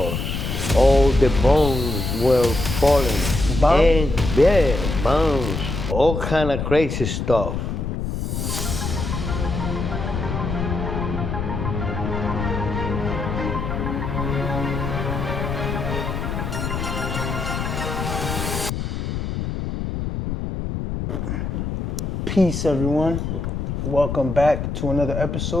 all the bombs were falling. Bombs? And yeah, bombs, all kind of crazy stuff. Peace, everyone. Welcome back to another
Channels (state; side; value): noise; left; rumble, 3 dB below the sound